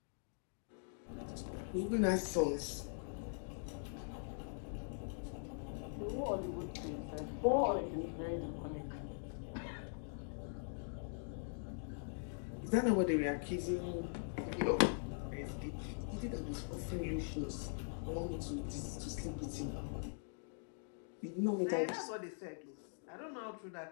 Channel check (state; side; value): silent; right; digital silence